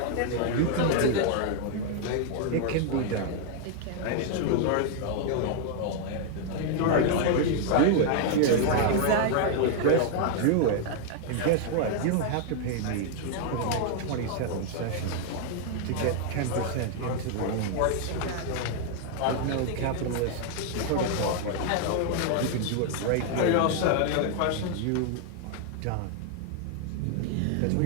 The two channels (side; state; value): both; different; correlation 0.00